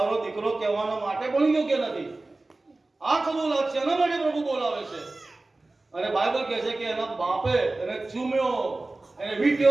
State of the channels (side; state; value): left; quieter; 3.1 dB